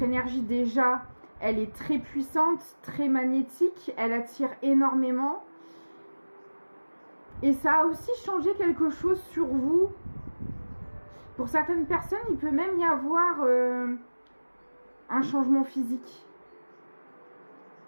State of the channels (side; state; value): both; inverted; correlation -1.00